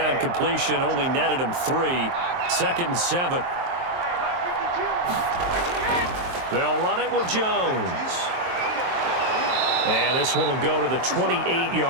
completion only netted him 3. 2nd and 7. They'll run it with Jones. And this one will go to the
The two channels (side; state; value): left; late; 23 ms